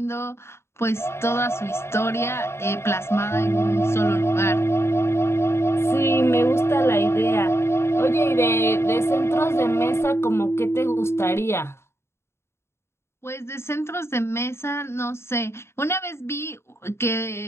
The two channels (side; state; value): right; late; 0.13 ms